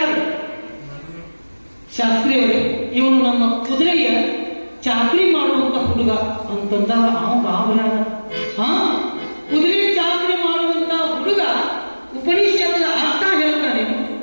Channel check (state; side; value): inverted; both; correlation -1.00